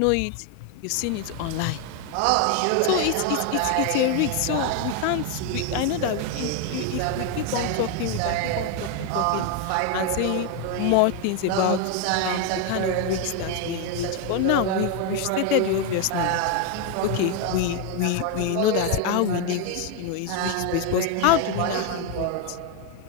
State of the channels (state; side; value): different; both; correlation 0.01